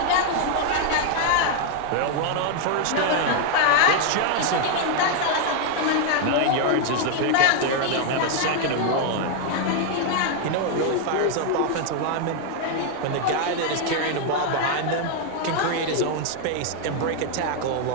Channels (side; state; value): both; different; correlation 0.00